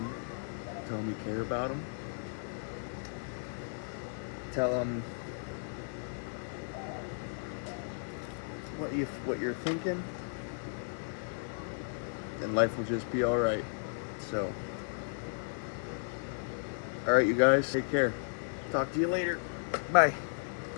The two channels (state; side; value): silent; right; digital silence